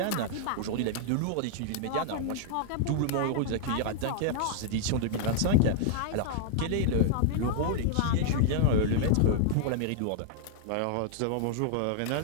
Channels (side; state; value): both; different; correlation -0.01